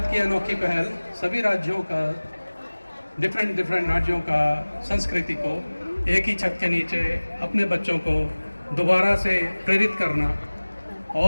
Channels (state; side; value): inverted; both; correlation -1.00